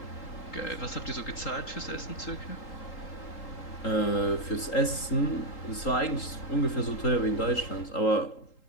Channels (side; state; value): right; late; 3.8 ms